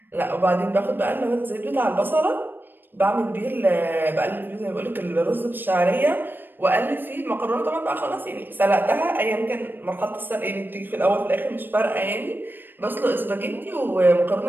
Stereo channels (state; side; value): late; left; 0.094 ms